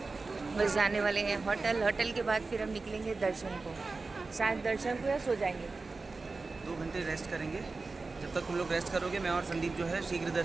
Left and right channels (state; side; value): quieter; left; 3.8 dB